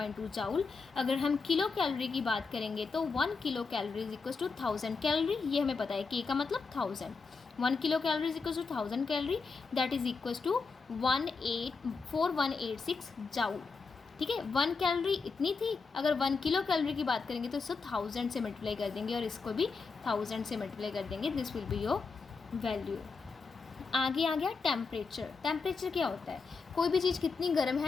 जाउल। अगर हम किलो कैलोरी की बात करेंगे तो 1 kilo calorie is equal to 1000 calorie, ये हमें पता है, के का मतलब 1000। 1 kilo calorie is equal to 1000 calorie, that is equal to 4186 joule. ठीक है, 1 कैलोरी इतनी थी, अगर 1 किलो कैलोरी की बात करेंगे तो इसको 1000 से मल्टीप्लाई कर देंगे और इसको भी 1000 से मल्टीप्लाई कर देंगे, this will be your value. आगे आ गया टेम्परेचर। टेम्परेचर क्या होता है? कोई भी चीज़ कितनी गर्म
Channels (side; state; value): right; quieter; 4.7 dB